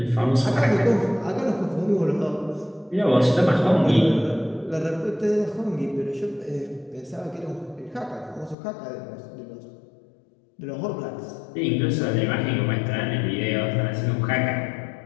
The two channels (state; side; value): drops out; right; at 8.6 s